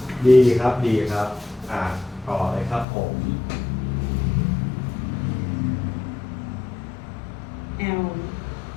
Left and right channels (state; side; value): drops out; right; at 2.9 s